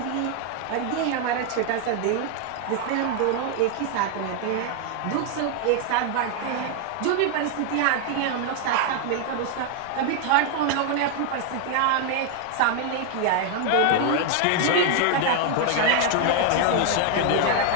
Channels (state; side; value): different; both; correlation 0.00